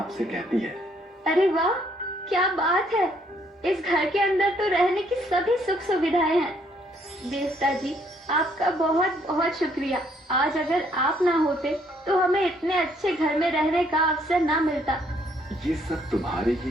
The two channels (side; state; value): both; normal; correlation 0.67